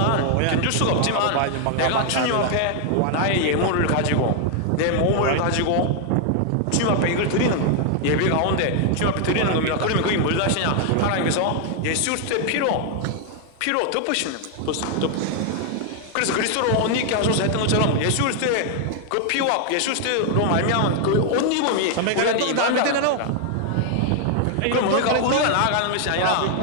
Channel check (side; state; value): both; different; correlation 0.00